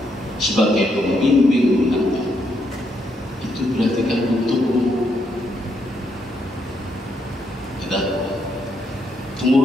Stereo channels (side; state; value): both; normal; correlation 0.77